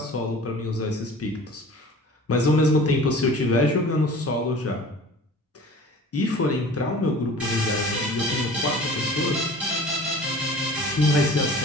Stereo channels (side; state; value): both; normal; correlation 0.43